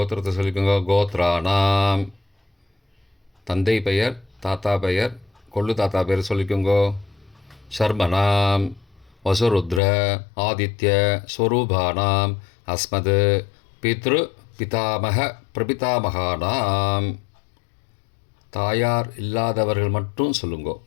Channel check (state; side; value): drops out; right; at 9.8 s